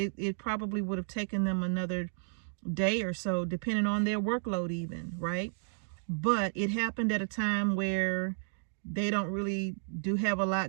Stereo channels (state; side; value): silent; left; digital silence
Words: probably would have taken them another day or so, depending on their workload even, right? But it happened at a time where they don't really do have a